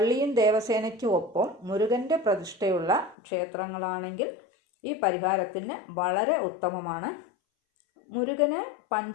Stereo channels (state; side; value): drops out; right; at 3.2 s